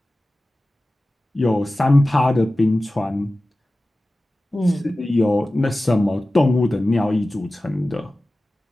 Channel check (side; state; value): both; normal; correlation 0.96